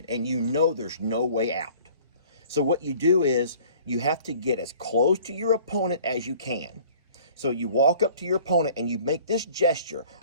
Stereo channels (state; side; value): inverted; both; correlation -0.51